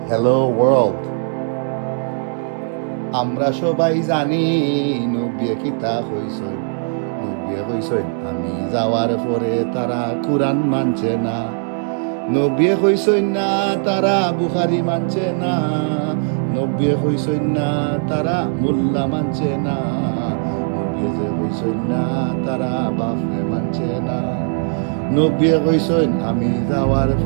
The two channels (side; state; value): left; silent; digital silence